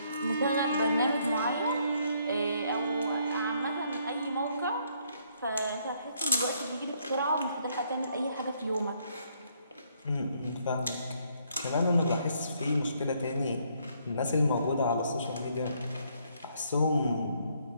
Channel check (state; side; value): inverted; both; correlation -0.70